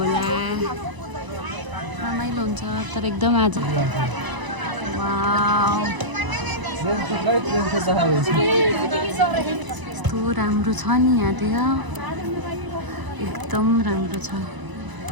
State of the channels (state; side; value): late; left; 1.0 ms